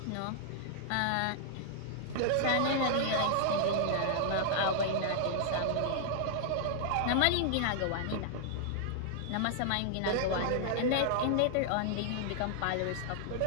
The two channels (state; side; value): different; both; correlation -0.01